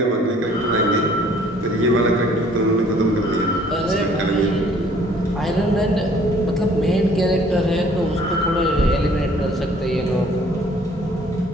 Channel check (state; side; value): normal; both; correlation 0.57